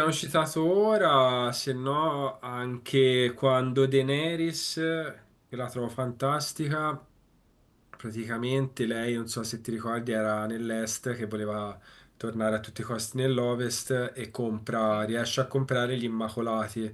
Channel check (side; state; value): both; identical; correlation 1.00